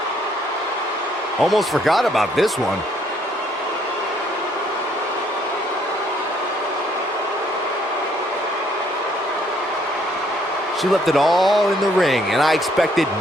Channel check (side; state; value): both; normal; correlation 0.67